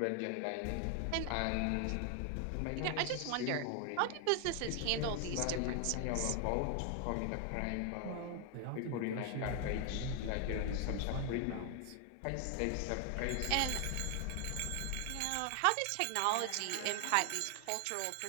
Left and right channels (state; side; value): different; both; correlation 0.00